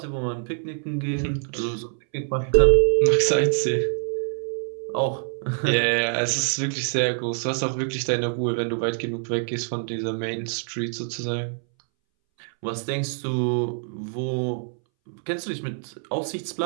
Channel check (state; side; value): silent; left; 61 dB below the other